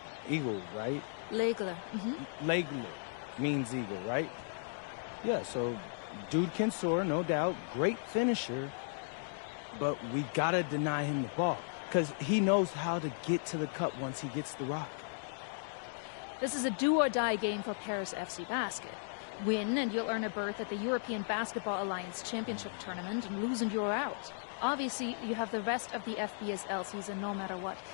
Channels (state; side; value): silent; right; digital silence